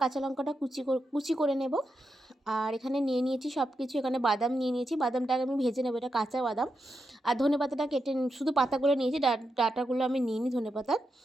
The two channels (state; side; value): normal; both; correlation 0.86